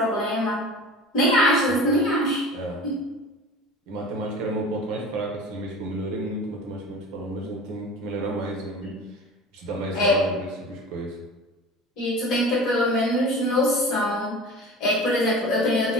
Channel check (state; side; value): normal; both; correlation 0.37